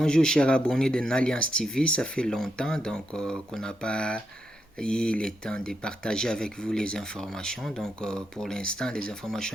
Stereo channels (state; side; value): normal; both; correlation 0.82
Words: chers abonnés de Nalliance TV, ça fait longtemps qu'on n'a pas eu le temps de partager avec vous les informations. Pour l'instant, les